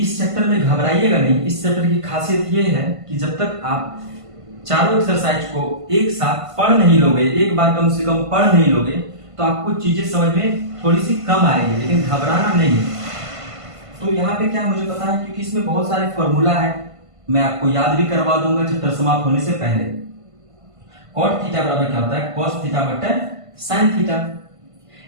चैप्टर में घबराइएगा नहीं, इस चैप्टर की खासियत ये है कि जब तक आप चारों एक्सरसाइज को एक साथ पढ़ नहीं लोगे, एक बार कम से कम पढ़ नहीं लोगे, तो आपको चीजें समझ में थोड़ी सी कम आएगी, लेकिन घबराना नहीं है। तो यहाँ पे क्या मुझे पता है, क्योंकि इसमें बहुत सारे फॉर्मूला है, मैं आपको याद भी करवा दूंगा चैप्टर समाप्त होने से पहले। कॉट थीटा बराबर क्या होता है cos थीटा बटे साइन थीटा।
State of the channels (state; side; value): late; left; 1.5 ms